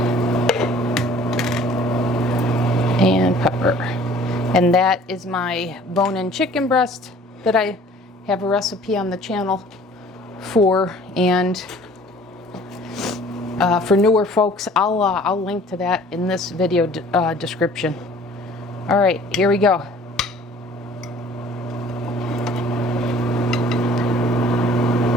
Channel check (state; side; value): normal; both; correlation 0.51